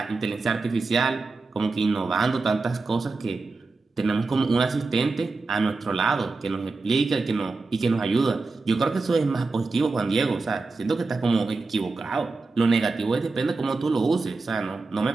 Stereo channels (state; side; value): quieter; left; 3.8 dB